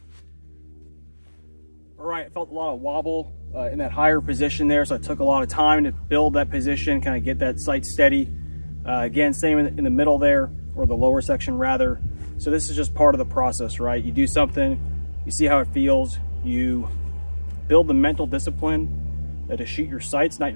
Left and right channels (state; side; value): inverted; both; correlation -1.00